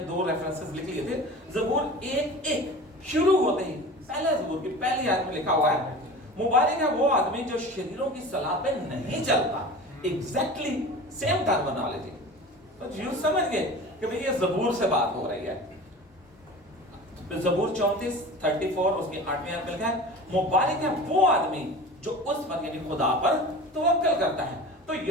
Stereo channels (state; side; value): normal; both; correlation 0.36